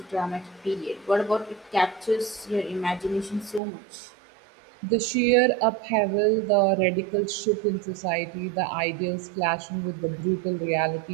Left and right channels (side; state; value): left; drops out; at 3.6 s